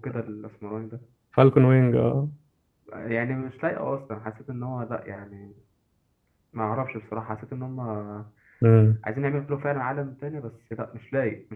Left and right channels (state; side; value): identical; both; correlation 1.00